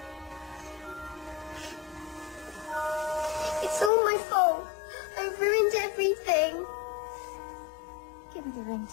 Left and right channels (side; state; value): right; drops out; at 3.9 s